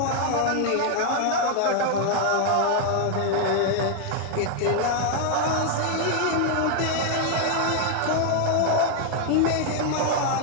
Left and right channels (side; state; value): both; different; correlation 0.00